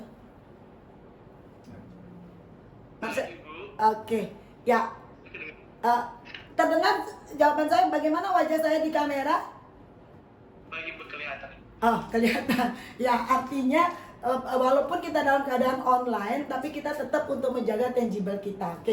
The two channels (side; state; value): both; identical; correlation 1.00